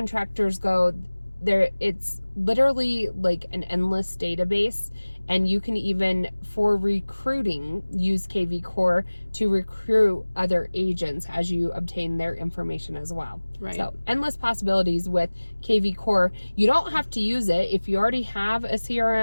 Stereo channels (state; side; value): inverted; both; correlation -1.00